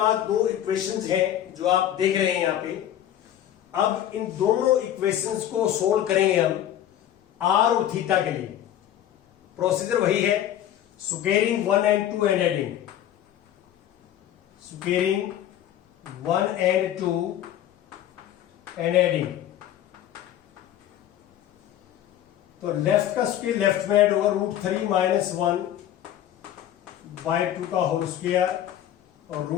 दो इक्वेशंस हैं जो आप देख रहे हैं यहां पे। अब इन दोनों इक्वेशंस को सोल्व करेंगे हम r और थीटा के लिए। प्रोसीजर वही है, squaring 1 and 2 and adding, squaring 1 and 2 and adding। तो लेफ्ट का स्क्वेयर लेफ्ट में ऐड होगा √3 - 1/2 का होल स्क्वायर और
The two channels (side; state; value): right; quieter; 11.4 dB